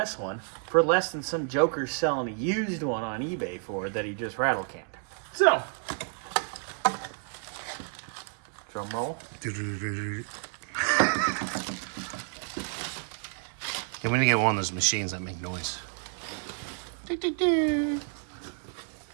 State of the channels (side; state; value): left; silent; 58 dB below the other